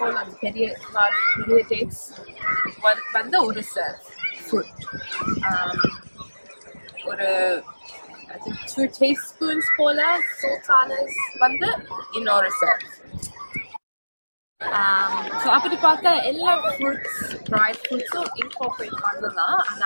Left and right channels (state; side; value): inverted; both; correlation -1.00